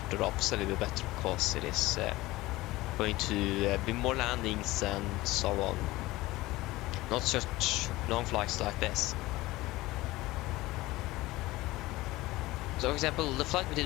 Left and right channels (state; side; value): quieter; right; 18.9 dB